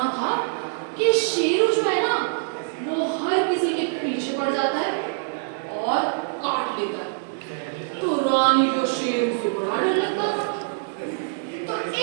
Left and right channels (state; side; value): silent; left; digital silence